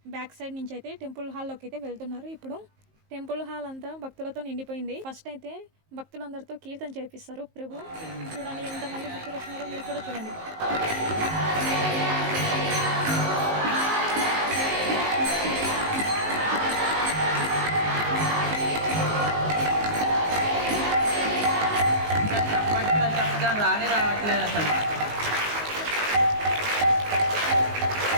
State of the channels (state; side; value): late; left; 19 ms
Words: బ్యాక్ సైడ్ నుంచి అయితే టెంపుల్ హాల్లోకి అయితే వెళ్తున్నారు. ఇప్పుడు టెంపుల్ హాల్ అంతా భక్తులతో నిండిపోయింది. ఫస్ట్ అయితే భక్తులందరితో కీర్తన చేపిస్తారు ప్రభు. చూడండి ఎంతమంది భక్తులు వచ్చినారో మీరు కూడా చూడండి. రానే రావట్లేదు అసలు.